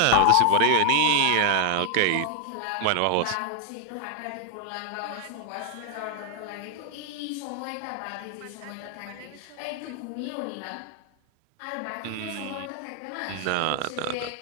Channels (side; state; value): both; different; correlation 0.00